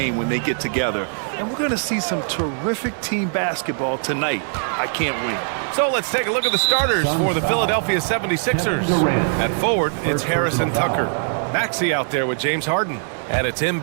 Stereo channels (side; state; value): left; silent; digital silence